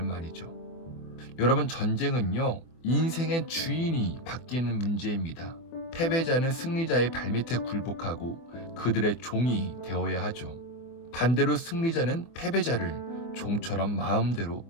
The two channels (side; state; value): right; late; 24 ms